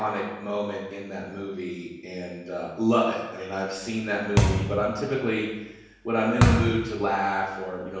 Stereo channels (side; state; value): both; identical; correlation 1.00